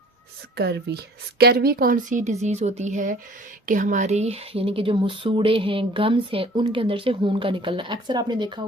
स्कर्वी। स्कर्वी कौन सी डिज़ीज़ होती है कि हमारी यानी कि जो मसूड़े हैं, गम्स हैं, उनके अंदर से खून का निकलना। अक्सर आपने देखा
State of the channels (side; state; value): both; normal; correlation 0.50